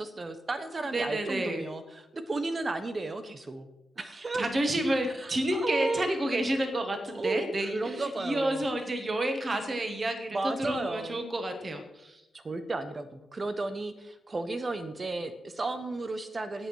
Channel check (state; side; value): normal; both; correlation 0.91